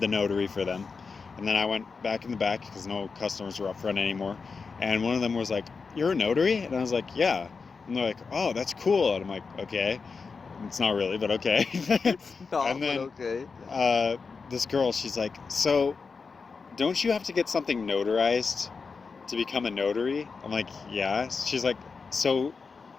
notary for them. And then I went back in the back because no customers were up front anymore. And one of them was like, "You're a notary?" And I was like, "Yeah." And they're like, "Oh, that's cool." And I'm like, "Okay." It's not really, but okay. It's not, And then, but okay. This girl, she's like, "So, don't you have to get something notarized to become a notary?" I'm like, "Yeah." She's like, "So,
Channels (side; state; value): right; quieter; 4.9 dB